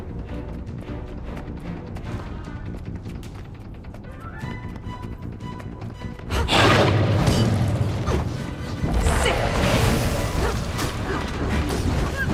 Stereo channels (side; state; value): both; identical; correlation 1.00